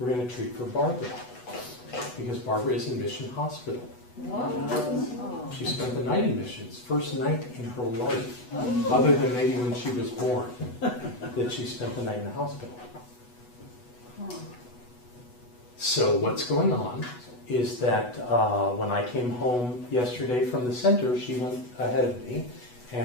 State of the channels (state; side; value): late; right; 8.1 ms